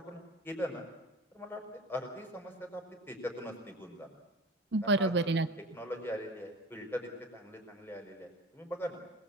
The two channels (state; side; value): normal; both; correlation 0.36